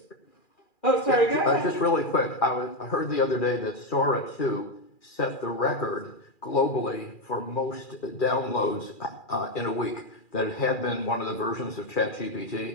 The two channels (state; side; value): late; right; 2.4 ms